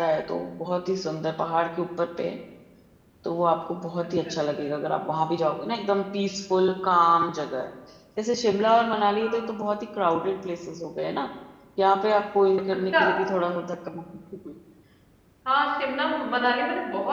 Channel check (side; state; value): both; identical; correlation 1.00